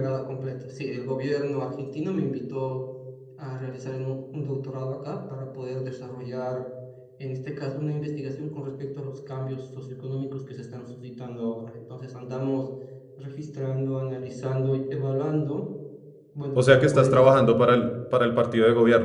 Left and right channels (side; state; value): both; identical; correlation 1.00